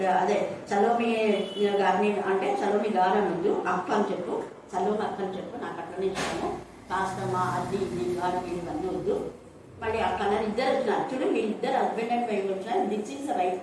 అదే సలోమి గారిని అంటే సలోమి గారు ముందు అక్క అని చెప్పు, సలోమి అక్క అని చెప్పు, నాకు అట్లనే ఇష్టము. కాస్తమా అది ఇది గారు వీళ్ళన్నీ వద్దు. మళ్ళీ అక్కడ ఇద్దరు వచ్చినారు చూడు, వీళ్ళిద్దరు హస్బెండ్ అండ్ వైఫ్ వచ్చినారు. This is the right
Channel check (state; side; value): identical; both; correlation 1.00